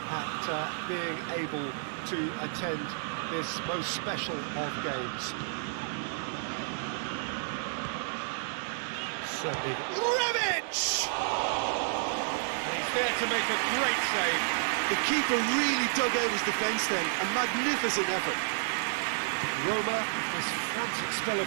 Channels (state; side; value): silent; left; digital silence